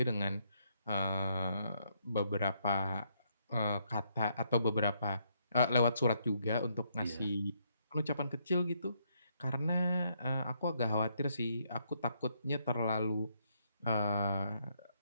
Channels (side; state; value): both; inverted; correlation -0.74